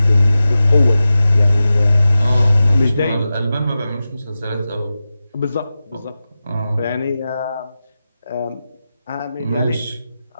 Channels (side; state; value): both; inverted; correlation -0.93